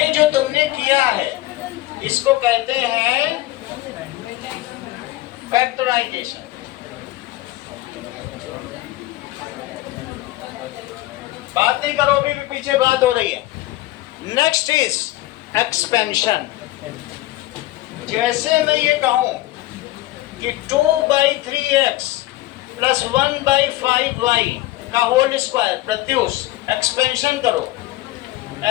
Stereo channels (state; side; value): quieter; right; 17.0 dB